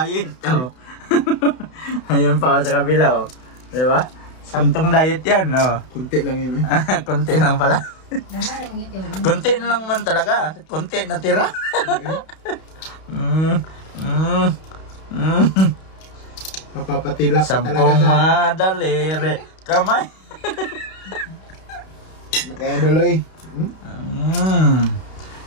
Oh. Ayun pa sa kabila. Oh. Diba? Saktong diet yan. Oh. Kunti lang yun eh. Kunti lang pala. Naman ang ito. Kunti na lang man talaga. Kunti na tira. Mapapatilap ka talaga Sampung sa... madaliri. Kamay. Kaya duloy.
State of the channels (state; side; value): late; right; 32 ms